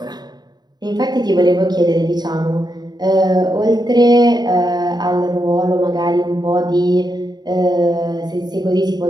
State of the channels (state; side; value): late; left; 0.20 ms